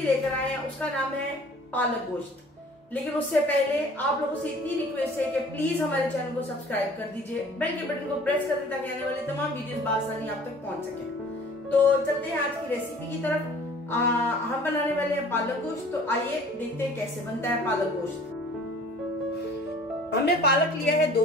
लेकर आए हैं, उसका नाम है पालक गोश्त। लेकिन उससे पहले आप लोगों से इतनी रिक्वेस्ट है कि प्लीज हमारे चैनल को सब्सक्राइब कर दीजिए, बेल के बटन को प्रेस कर दें ताकि आने वाली तमाम वीडियोस बआसानी आप तक पहुंच सके। तो चलते हैं आज की रेसिपी की तरफ। हम बनाने वाले हैं पालक गोश्त। तो आइए देखते हैं कैसे बनता है पालक गोश्त। हमने पालक लिया है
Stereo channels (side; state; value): both; normal; correlation 0.50